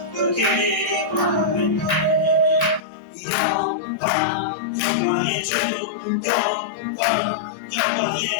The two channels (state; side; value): drops out; right; at 2.8 s